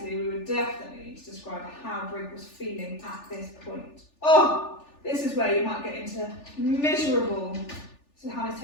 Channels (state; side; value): late; right; 3.4 ms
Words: we would definitely need to describe how Brig was feeling at this point. Oh, this is where you might get into miserable So how Miss